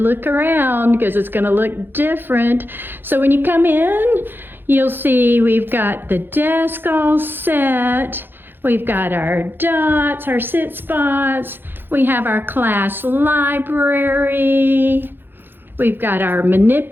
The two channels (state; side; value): late; left; 0.10 ms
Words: around because it's gonna look different. So when you come in, you'll see we've got the desk all set. We've got our dots, our sit spots. We have our class library. We've got our